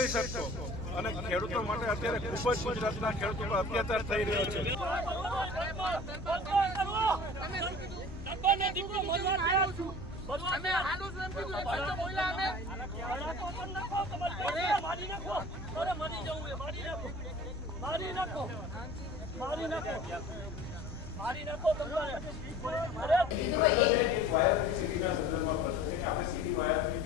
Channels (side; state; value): both; normal; correlation 0.43